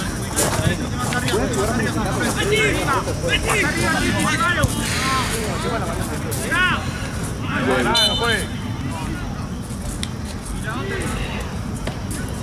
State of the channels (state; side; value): identical; both; correlation 1.00